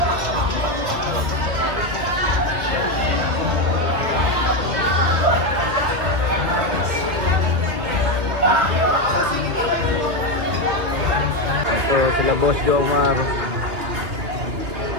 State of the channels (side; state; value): left; late; 2.6 ms